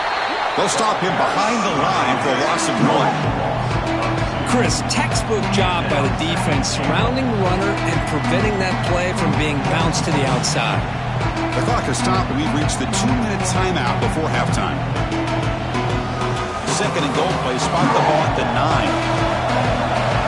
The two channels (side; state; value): both; identical; correlation 1.00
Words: They'll stop him behind the line for a loss of 1. Chris, textbook job by the defense surrounding the runner and preventing that play from being bounced to the outside. The clock has stopped, and we've reached the 2-minute timeout before halftime. second and goal play. Spot the ball at the 9.